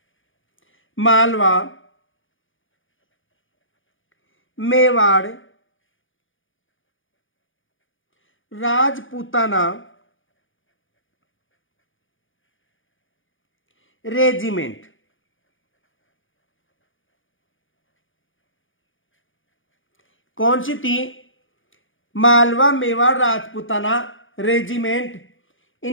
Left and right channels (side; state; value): right; late; 0.57 ms